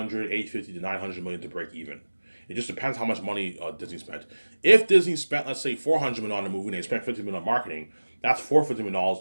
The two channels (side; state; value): both; inverted; correlation -1.00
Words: 850 to 900 million to break even. It just depends how much money Disney spent. If Disney spent, let's say, 400 million on the movie and they spent 50 million on marketing, that's